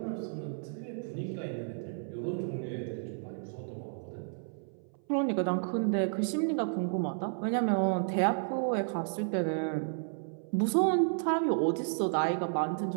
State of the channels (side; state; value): left; silent; 56 dB below the other